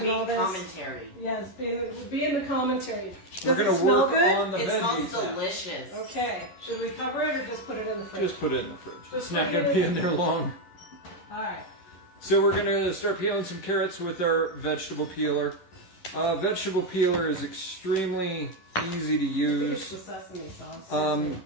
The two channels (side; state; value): right; late; 11 ms